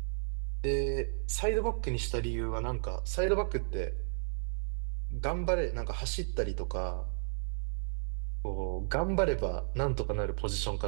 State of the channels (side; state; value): left; silent; digital silence